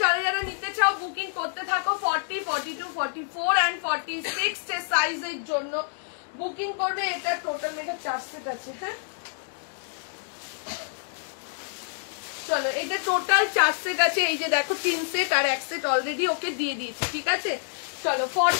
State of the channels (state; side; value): silent; right; digital silence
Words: যারা যারা নিতে চাও বুকিং করতে থাকো। 40, 42, 44 and 46 সাইজের জন্য বুকিং করবে। এটা টোটাল মেকআপ 4 সেট আছে, হ্যাঁ চলো এটা টোটাল 4 সেট আছে। এই যে দেখো 3 সেট আর 1 সেট অলরেডি ওকে দিয়ে দিয়েছি, ঠিক আছে? চলো